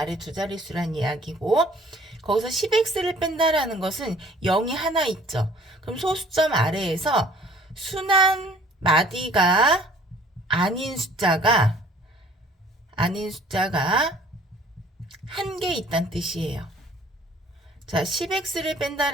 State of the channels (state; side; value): normal; both; correlation 0.53